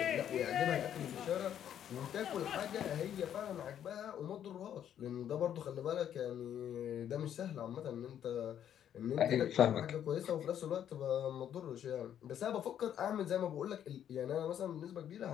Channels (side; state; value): right; quieter; 9.9 dB